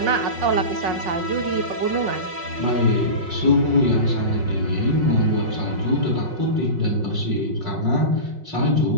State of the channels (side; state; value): left; late; 5.4 ms